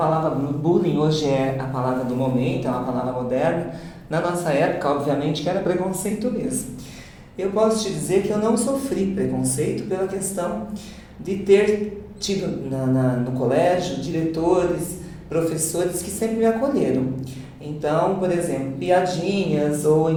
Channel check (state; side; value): identical; both; correlation 1.00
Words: bullying hoje é a palavra do momento, é uma palavra moderna, na nossa época, obviamente, que era preconceito mesmo. Eu posso te dizer que eu não sofri preconceito pela questão de ter tido no colégio diretores, professores que sempre me acolheram. Então, por exemplo, piadinhas ou